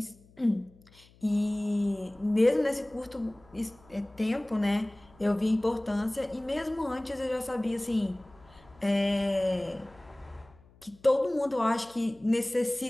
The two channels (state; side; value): noise; left; hum, 27 dB below the sound